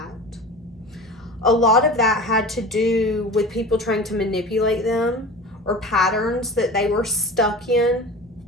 A lot of that had to do with people trying to manipulate them or patterns that they were stuck in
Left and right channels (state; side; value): normal; both; correlation 0.35